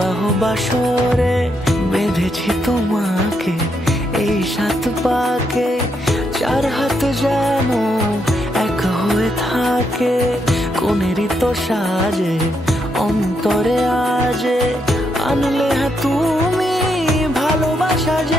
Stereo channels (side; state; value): both; normal; correlation 0.79